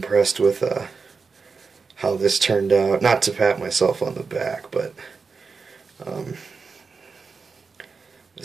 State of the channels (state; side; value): quieter; left; 4.9 dB